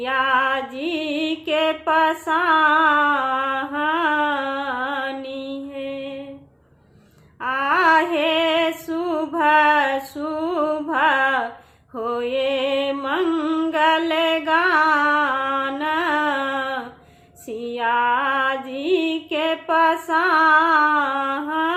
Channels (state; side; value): identical; both; correlation 1.00